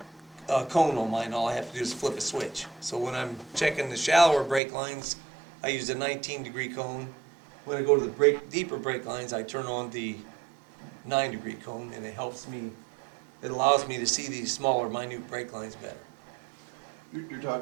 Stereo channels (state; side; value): drops out; left; at 4.6 s